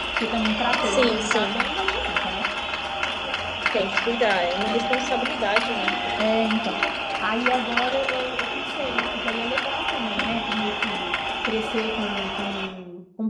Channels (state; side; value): identical; both; correlation 1.00